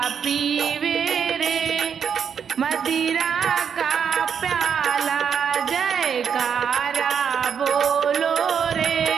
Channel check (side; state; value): left; quieter; 7.3 dB